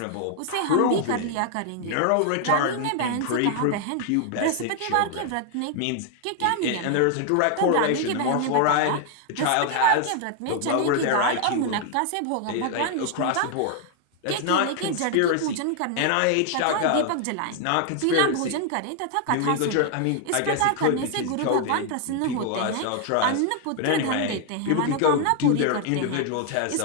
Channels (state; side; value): different; both; correlation 0.00